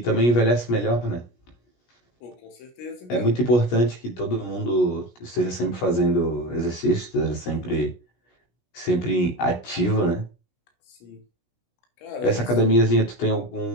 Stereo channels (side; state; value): right; late; 17 ms